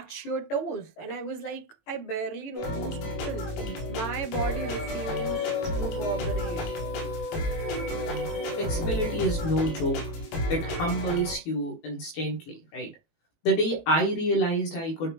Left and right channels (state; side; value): late; right; 18 ms